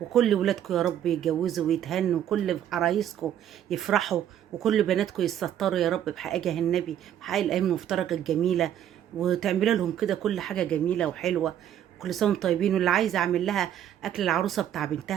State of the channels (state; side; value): quieter; left; 10.5 dB